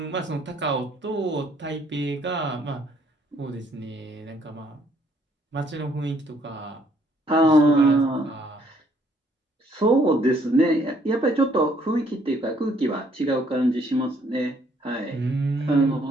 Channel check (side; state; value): both; normal; correlation 0.66